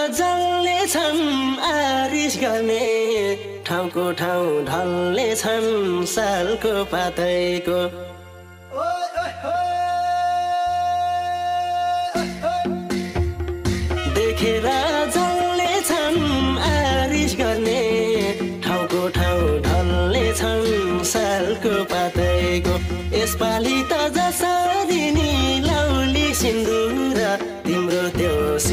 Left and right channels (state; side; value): identical; both; correlation 1.00